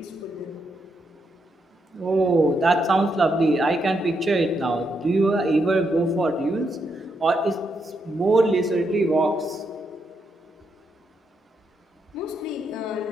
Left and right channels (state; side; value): normal; both; correlation 0.80